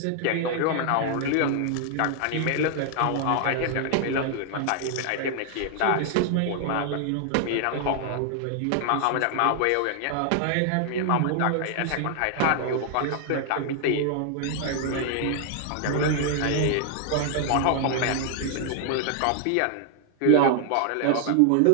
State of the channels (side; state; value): both; different; correlation 0.00